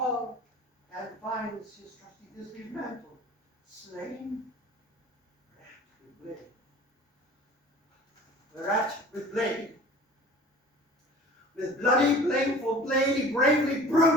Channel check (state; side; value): normal; both; correlation 0.44